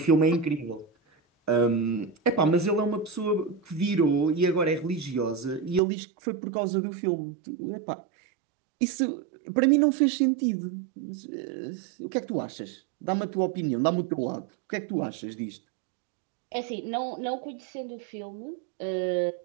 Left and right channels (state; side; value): drops out; left; at 5.8 s